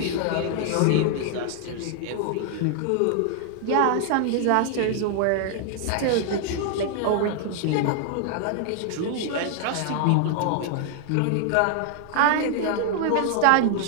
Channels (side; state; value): both; different; correlation 0.00